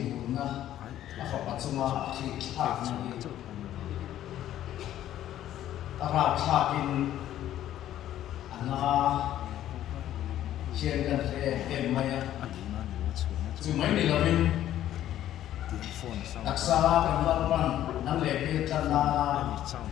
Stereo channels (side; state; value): right; quieter; 12.3 dB